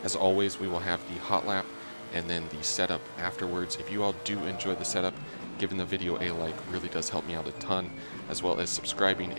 As always, we will have the hot lap and then the setup afterwards. If you all do enjoy the setup, giving the video a like really does help me out a ton, as well as subscribing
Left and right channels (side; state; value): both; inverted; correlation -1.00